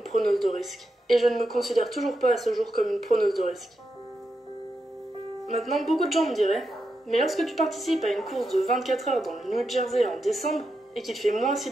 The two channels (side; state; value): both; normal; correlation 0.86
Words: preneuse de risque. Et je ne me considère toujours pas à ce jour comme une preneuse de risque. Maintenant, beaucoup de gens me diraient, mais lorsque tu participes à une course de 24 heures dans le New Jersey en décembre, et qu'il fait moins 6